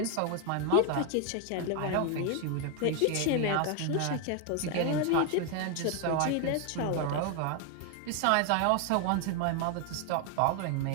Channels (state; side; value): different; both; correlation 0.01